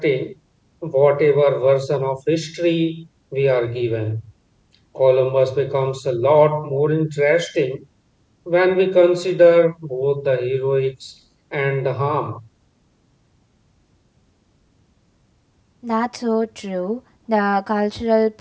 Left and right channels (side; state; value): both; identical; correlation 1.00